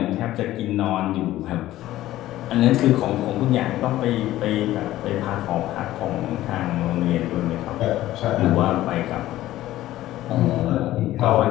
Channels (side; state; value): right; quieter; 14.9 dB